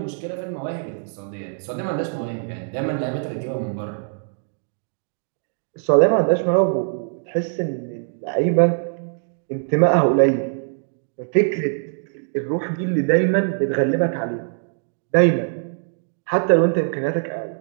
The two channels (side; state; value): left; silent; digital silence